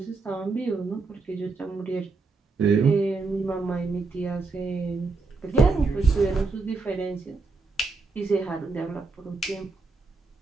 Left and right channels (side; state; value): left; quieter; 3.9 dB